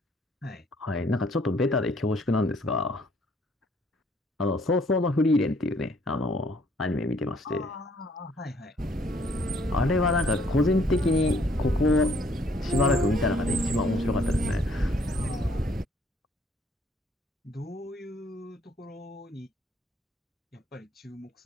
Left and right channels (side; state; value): both; normal; correlation 0.64